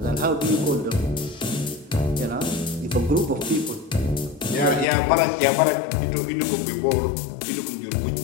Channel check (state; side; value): drops out; right; at 4.9 s